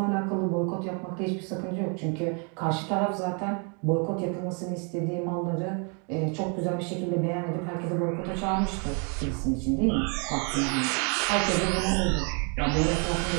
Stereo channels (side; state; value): left; quieter; 37.0 dB